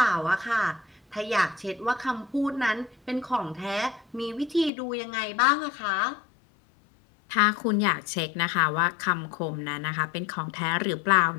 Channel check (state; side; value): drops out; right; at 4.7 s